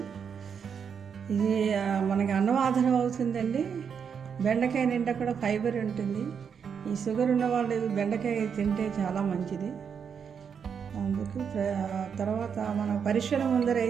ఇది మనకి అన్నవాదనం అవుతుందండి. బెండకాయ నిండా కూడా ఫైబర్ ఉంటుంది. ఈ షుగర్ ఉన్న వాళ్ళు బెండకాయ తింటే చాలా మంచిది. అందుకు తర్వాత మన పరీక్షల ముందర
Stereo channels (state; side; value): quieter; left; 7.0 dB